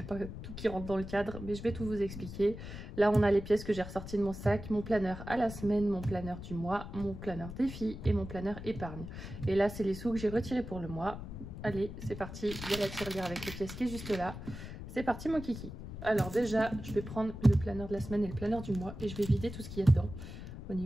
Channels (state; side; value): noise; left; rumble, 10 dB below the sound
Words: pas tout qui rentre dans le cadre, mais je vais tout vous expliquer. Là on a les pièces que j'ai ressorties de mon sac, mon planeur à la semaine, mon planeur du mois, mon planeur défi et mon planeur épargne. Et là c'est les sous que j'ai retirés pour le mois. Allez, c'est parti, il y a la tirelire avec les pièces qui est juste là. C'est parti mon kiki. Alors déjà, je vais prendre le planeur de la semaine et le planeur du mois et je vais vider tout ce qu'il y a dedans. Au